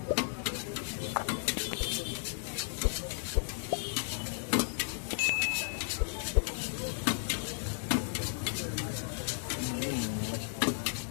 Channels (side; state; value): right; silent; digital silence